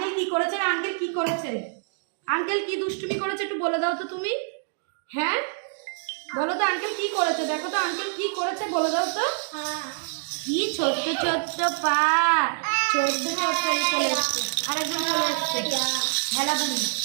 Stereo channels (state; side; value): silent; left; digital silence